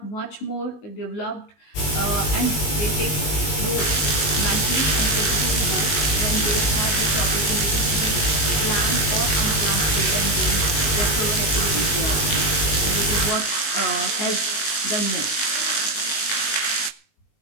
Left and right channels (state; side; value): late; right; 20 ms